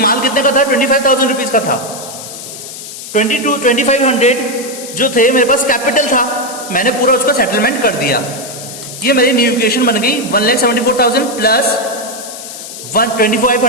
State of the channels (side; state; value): left; noise; hiss, 12 dB below the sound